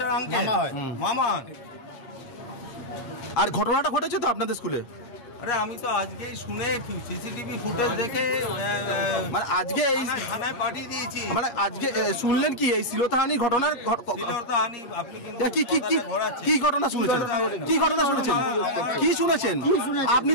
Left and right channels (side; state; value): right; late; 7.4 ms